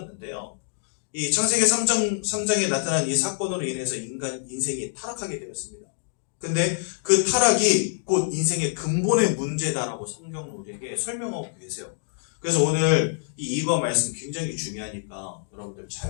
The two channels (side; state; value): right; silent; digital silence